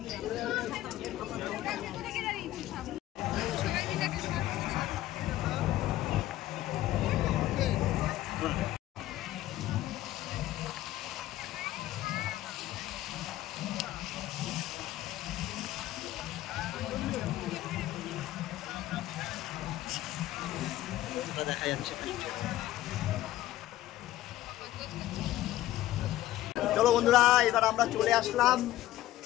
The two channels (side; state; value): right; quieter; 14.8 dB